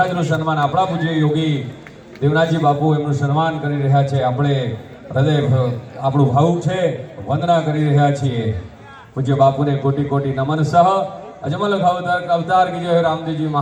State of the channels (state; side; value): identical; both; correlation 1.00